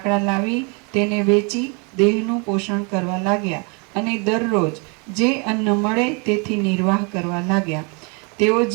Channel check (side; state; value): left; quieter; 33.4 dB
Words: લાવી તેને વેચી દેહનું પોષણ કરવા લાગ્યા અને દરરોજ જે અન્ન મળે તેથી નિર્વાહ કરવા લાગ્યા. તેઓ